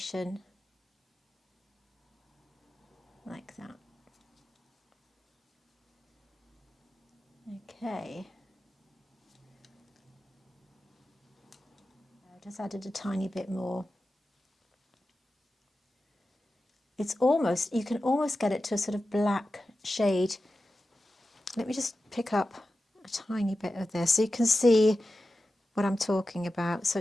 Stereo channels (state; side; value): normal; both; correlation 0.93